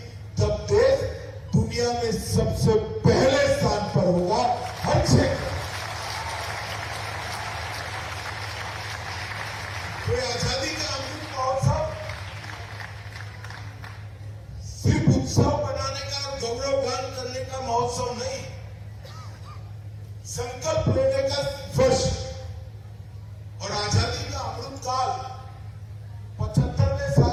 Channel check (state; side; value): identical; both; correlation 1.00